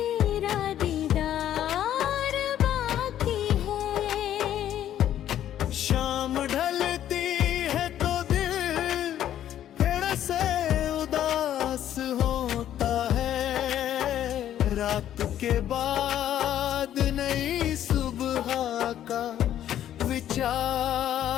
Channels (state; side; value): quieter; right; 11.3 dB